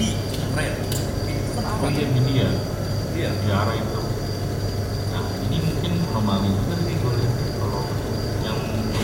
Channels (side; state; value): both; identical; correlation 1.00